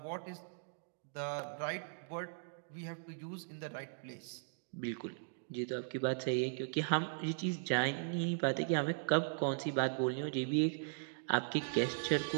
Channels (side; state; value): left; silent; digital silence